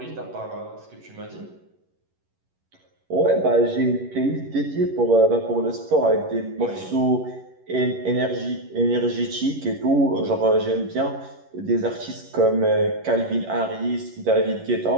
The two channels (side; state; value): left; late; 11 ms